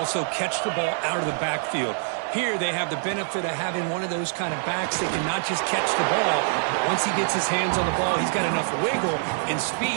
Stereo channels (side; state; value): left; silent; 62 dB below the other